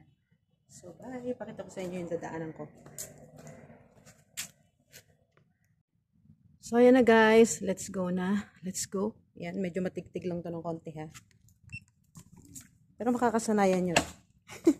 So, bye! Pakita ko sa inyo yung dadaanan ko. So, ayan na guys. Let's go na. Let's go. Ayan, medyo matigtig lang to ng konti ha. Pero makakasanayan nyo.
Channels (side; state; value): both; identical; correlation 1.00